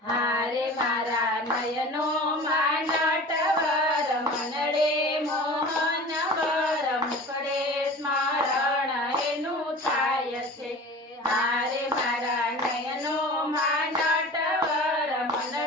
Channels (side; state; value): both; normal; correlation 0.38